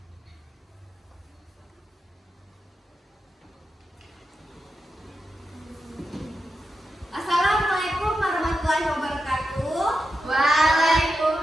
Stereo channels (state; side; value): normal; both; correlation 0.88